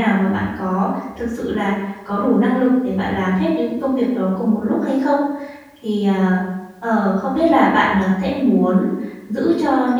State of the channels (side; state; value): both; identical; correlation 1.00